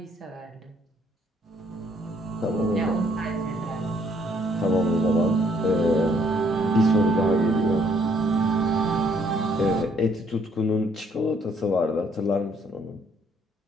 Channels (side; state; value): both; normal; correlation 0.66